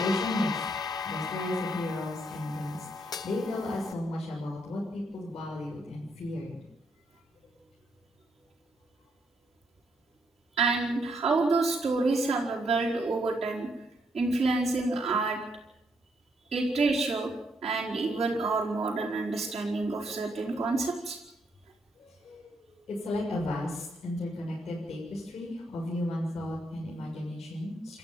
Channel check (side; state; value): both; normal; correlation 0.75